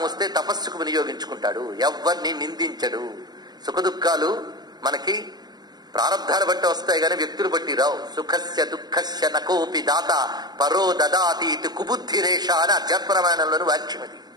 వస్తే తపస్సుకు వినియోగించుకుంటాడు, ఎవ్వరిని నిందించడు. సుఖదుఖాలు మనకి ప్రారంధాలు బట్టి వస్తాయి కానీ వ్యక్తులు బట్టి రావు. సుఖస్య దుఃఖస్య నకోపి దాత పరో దదాతి ఇది కుబుద్ధిరేష అని అధ్యాత్మరామాయణంలోని వాక్యమది.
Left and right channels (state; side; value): late; left; 0.20 ms